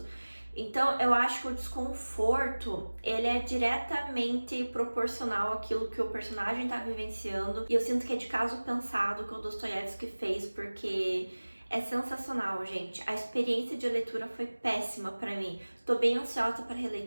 Então, eu acho que o desconforto, ele é diretamente proporcional àquilo que o personagem está vivenciando. E eu sinto que é de caso pensado que o Dostoiévski fez, porque é sensacional, gente. A experiência de leitura foi péssima pra mim. Tô bem ansiosa pra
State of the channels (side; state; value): both; inverted; correlation -1.00